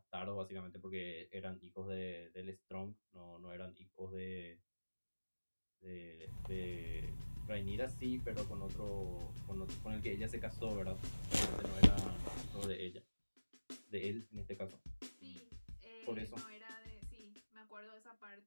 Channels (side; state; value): both; inverted; correlation -1.00